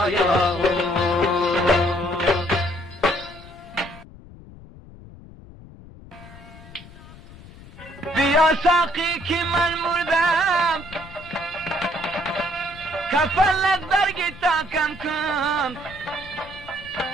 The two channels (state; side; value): noise; left; rumble, 19 dB below the sound